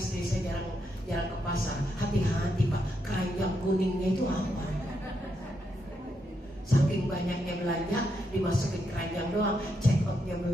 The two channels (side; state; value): both; normal; correlation 0.80